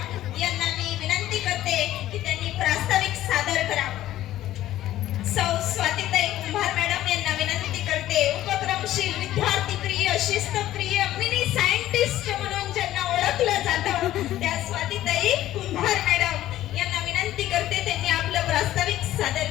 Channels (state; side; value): quieter; right; 13.9 dB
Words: यांना मी विनंती करते की त्यांनी प्रास्ताविक सादर करावं. सौ स्वातीताई कुंभार मॅडम यांना विनंती करते, उपक्रमशील विद्यार्थी प्रिय शिस्तप्रिय मिनी सायंटिस्ट म्हणून ज्यांना ओळखलं जातं त्या स्वातीताई कुंभार मॅडम यांना विनंती करते त्यांनी आपलं प्रास्ताविक सादर